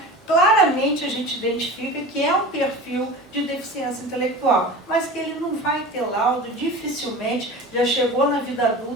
claramente a gente identifica que é um perfil de deficiência intelectual, mas que ele não vai ter laudo, dificilmente, já chegou na vida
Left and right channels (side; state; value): both; normal; correlation 0.34